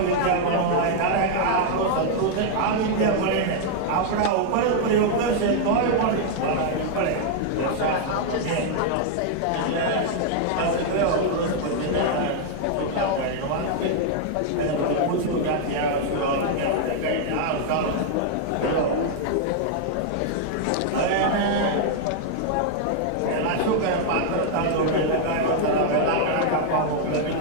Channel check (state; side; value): different; both; correlation 0.00